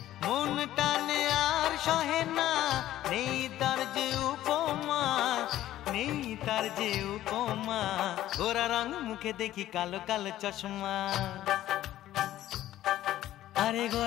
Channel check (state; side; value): quieter; right; 13.7 dB